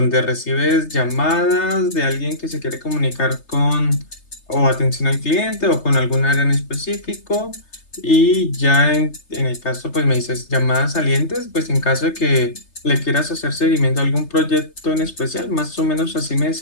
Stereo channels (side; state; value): right; late; 3.3 ms